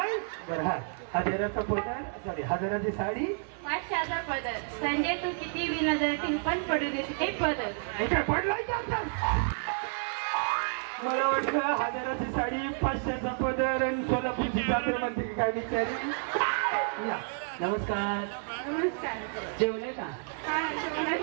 बरं. हा 1000चा पदर सॉरी 1000ची साडी 500चा पदर. संजय तू किती विना तू पण पडू दे ते पदर. काय पडलाय का आता. मला वाटलं 1000ची साडी 500चा पदर आणि सोलापूरची चादर म्हणते काय बिचारी. या नमस्कार. नमस्कार. जेवले का? हा, जेवणात.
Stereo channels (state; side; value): silent; left; 58 dB below the other